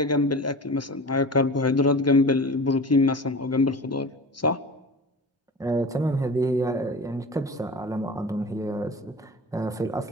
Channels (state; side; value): normal; both; correlation 0.35